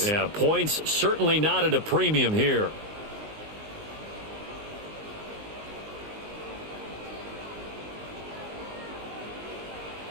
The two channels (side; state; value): left; late; 19 ms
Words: Yeah, points certainly not at a premium here.